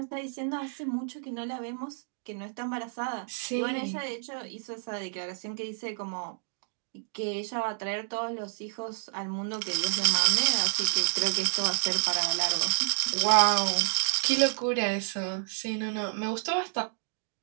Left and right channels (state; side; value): silent; left; digital silence